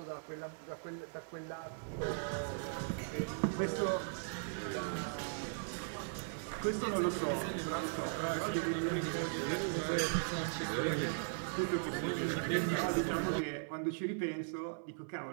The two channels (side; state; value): left; silent; 52 dB below the other